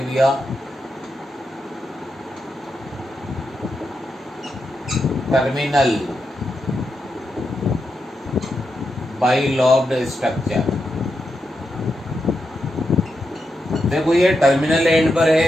भैया, टर्मिनल बाइलोब्ड स्ट्रक्चर। देखो ये टर्मिनल एंड पर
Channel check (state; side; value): normal; both; correlation 0.86